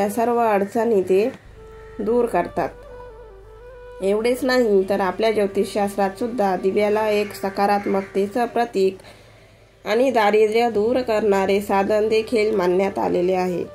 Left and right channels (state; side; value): identical; both; correlation 1.00